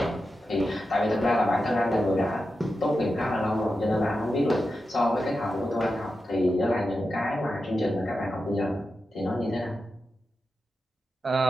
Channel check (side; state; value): both; normal; correlation 0.90